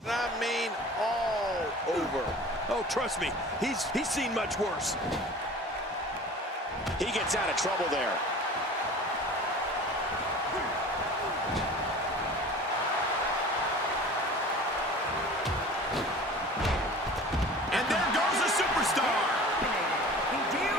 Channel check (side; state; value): both; normal; correlation 0.41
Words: I mean, all over. Oh, trust me, he's seen much worse. He gets out of trouble there. And there goes a superstar. Hideo